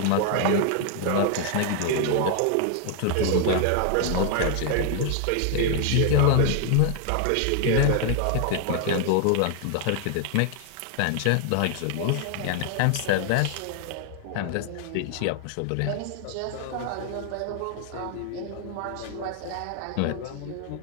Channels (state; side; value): different; both; correlation 0.00